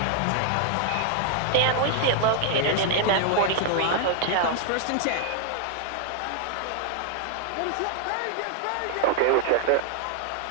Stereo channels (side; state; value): both; different; correlation 0.00